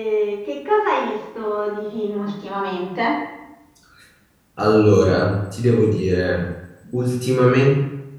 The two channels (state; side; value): identical; both; correlation 1.00